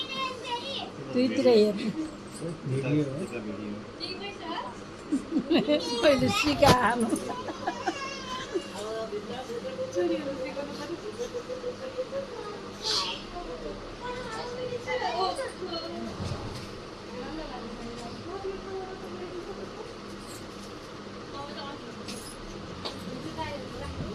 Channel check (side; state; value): both; identical; correlation 1.00